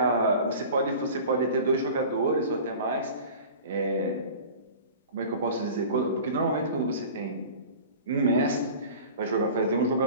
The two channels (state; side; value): inverted; both; correlation -0.39